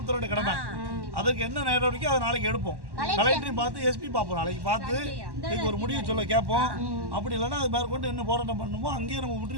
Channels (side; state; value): left; late; 1.1 ms